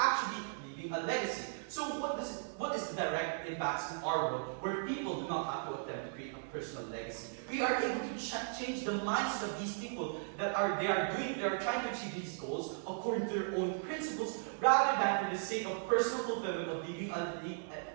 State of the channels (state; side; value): silent; left; digital silence